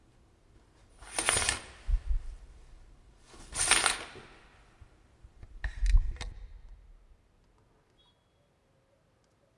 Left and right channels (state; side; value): identical; both; correlation 1.00